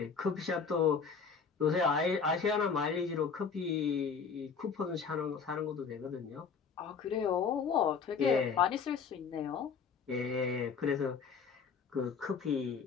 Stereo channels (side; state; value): right; quieter; 5.8 dB